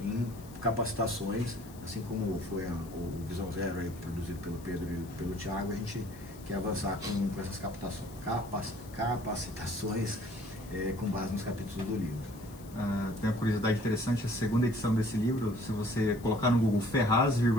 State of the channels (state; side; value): noise; left; hiss, 22 dB below the sound